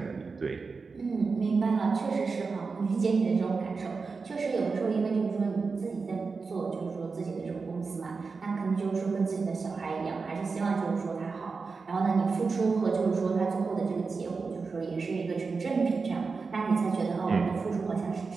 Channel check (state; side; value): quieter; left; 4.6 dB